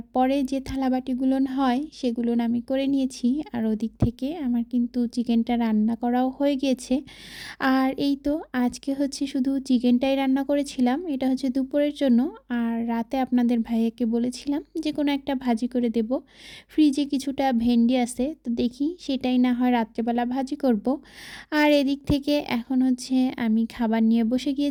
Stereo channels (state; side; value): identical; both; correlation 1.00